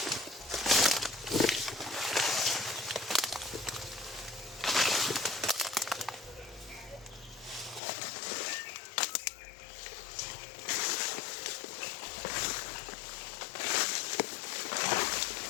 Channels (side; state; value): right; drops out; at 7.8 s